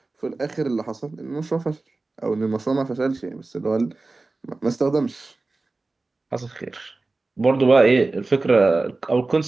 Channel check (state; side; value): quieter; left; 3.4 dB